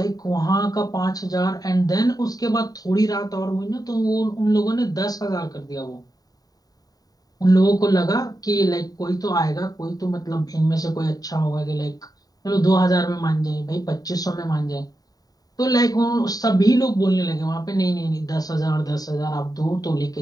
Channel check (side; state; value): right; late; 0.18 ms